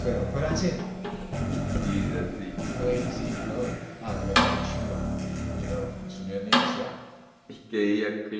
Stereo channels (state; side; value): identical; both; correlation 1.00